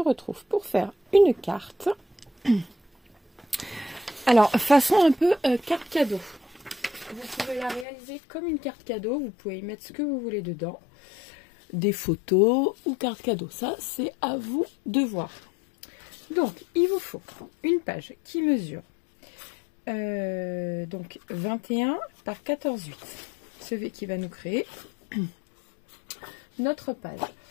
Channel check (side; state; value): right; drops out; at 7.9 s